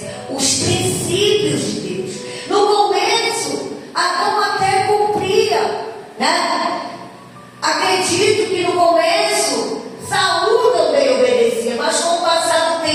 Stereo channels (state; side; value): identical; both; correlation 1.00